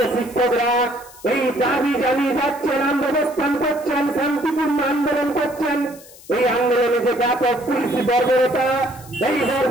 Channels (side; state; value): left; noise; hiss, 21 dB below the sound